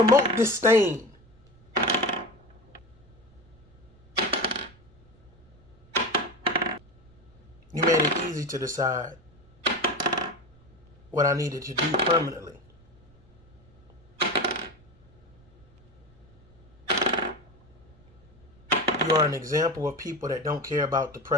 disdain. You made it easy to decide what I needed to do permanently. You are an example of people that don't care about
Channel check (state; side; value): noise; right; rumble, 29 dB below the sound